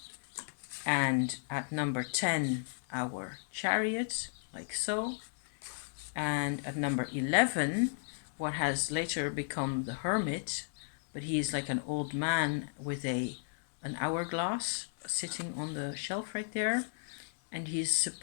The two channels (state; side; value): silent; right; digital silence